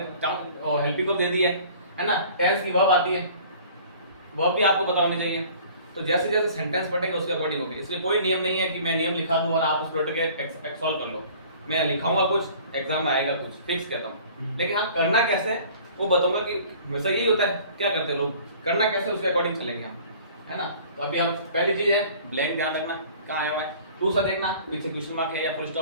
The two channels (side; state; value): both; inverted; correlation -0.49